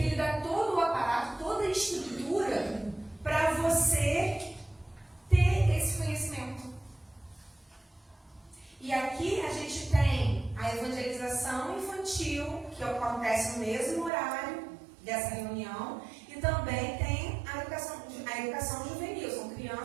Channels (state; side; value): drops out; left; at 14.1 s